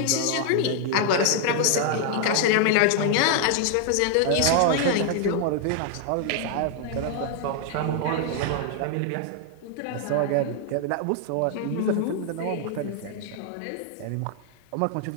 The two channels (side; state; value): both; different; correlation 0.00